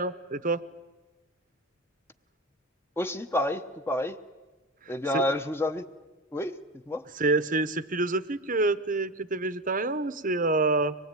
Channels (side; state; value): both; normal; correlation 0.24